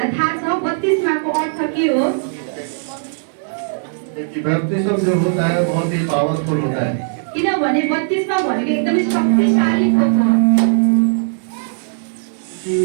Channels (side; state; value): left; silent; digital silence